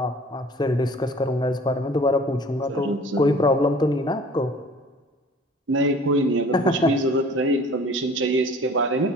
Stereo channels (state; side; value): normal; both; correlation 0.47